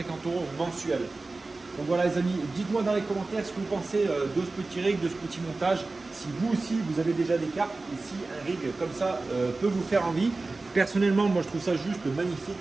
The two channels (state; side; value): quieter; left; 3.4 dB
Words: € mensuel. Donc voilà les amis, dites-moi dans les commentaires ce que vous pensez de ce petit rig, de ce petit montage. Si vous aussi, vous avez déjà des cartes et si un rig comme ça peut vous faire envie. Personnellement, moi je trouve ça juste magnifique